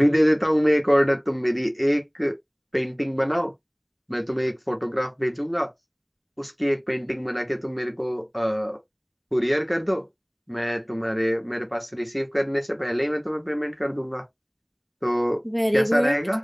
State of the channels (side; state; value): both; identical; correlation 1.00